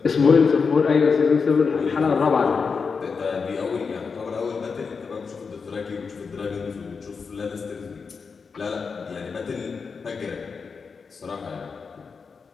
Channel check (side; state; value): right; quieter; 5.3 dB